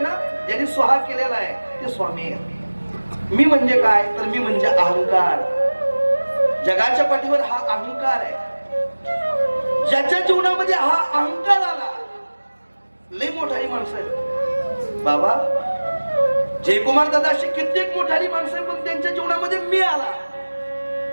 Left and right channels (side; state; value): both; inverted; correlation -1.00